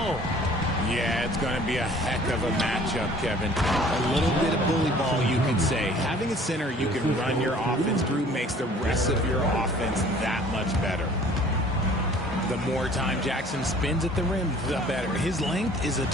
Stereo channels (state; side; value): normal; both; correlation 0.52